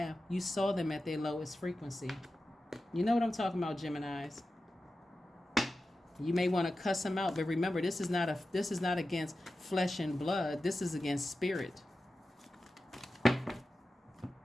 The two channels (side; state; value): both; normal; correlation 0.93